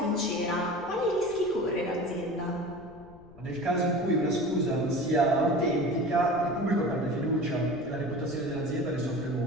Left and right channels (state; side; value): noise; left; rumble, 23 dB below the sound